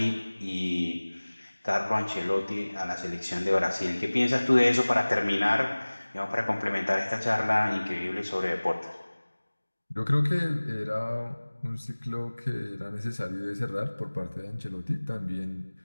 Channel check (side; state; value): both; inverted; correlation -1.00